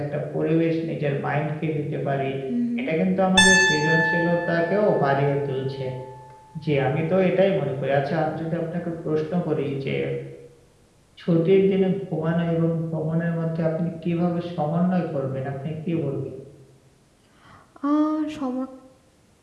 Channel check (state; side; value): identical; both; correlation 1.00